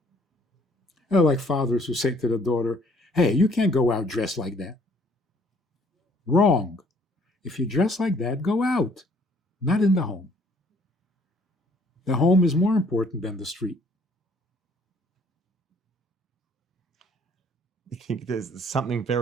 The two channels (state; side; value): normal; both; correlation 0.61